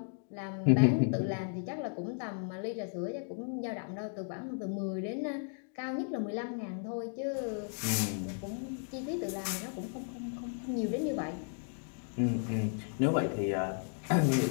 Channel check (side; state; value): right; silent; 55 dB below the other